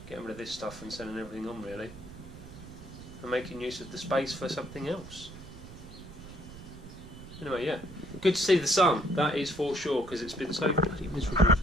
getting rid of this stuff and sending everything on really, and making use of the space for something else. Anyway, yeah, good to see the sun, that is for sure, because it's been so bloody miserable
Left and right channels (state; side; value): noise; right; rumble, 15 dB below the sound